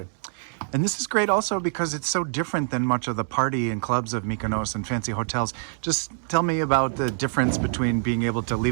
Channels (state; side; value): silent; left; digital silence